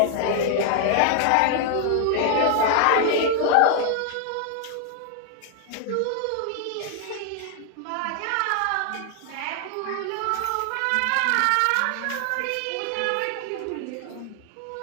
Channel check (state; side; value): different; both; correlation 0.00